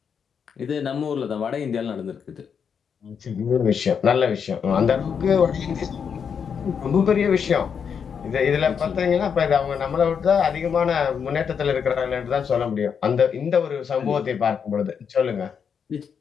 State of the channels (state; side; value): quieter; right; 6.9 dB